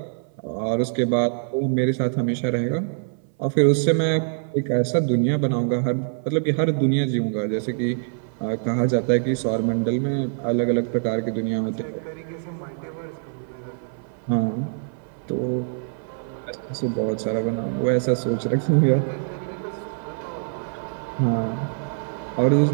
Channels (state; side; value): silent; left; 57 dB below the other